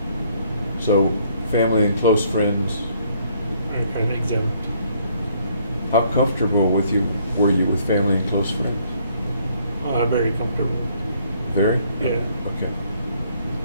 So family and close friends, Are kind of exempt. how comfortable were you with family and close friends? Very comfortable. Very? Yeah. Okay.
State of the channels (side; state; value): both; inverted; correlation -0.65